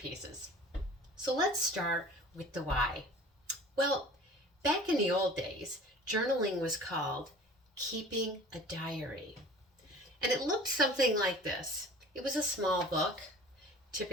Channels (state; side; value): normal; both; correlation 0.44